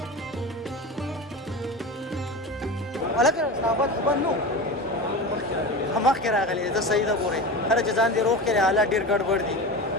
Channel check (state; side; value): normal; both; correlation 0.27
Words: ولکه صحابت خبر نو مخکې راغلی زه صحیح ده ګورې هره چې ځان دې روغ کړې حالات ډېر ګډوډ دي